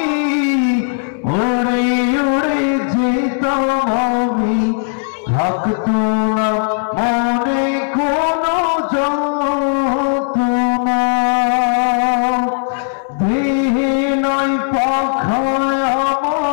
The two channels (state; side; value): silent; right; 69 dB below the other